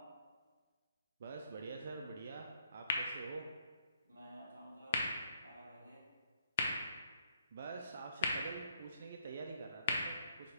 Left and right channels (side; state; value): both; inverted; correlation -0.72